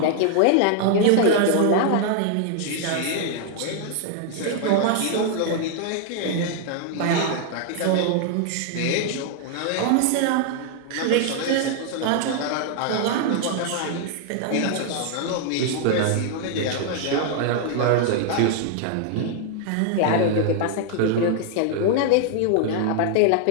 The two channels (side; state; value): both; different; correlation 0.00